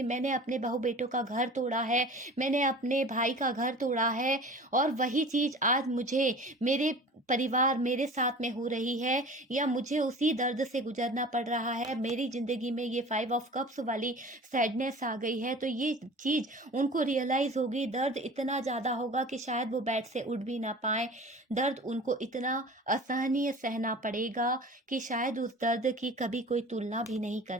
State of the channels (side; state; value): both; normal; correlation 0.40